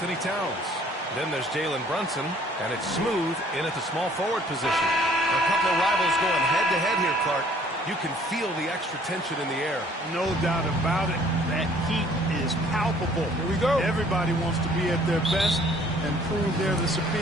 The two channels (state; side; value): normal; both; correlation 0.57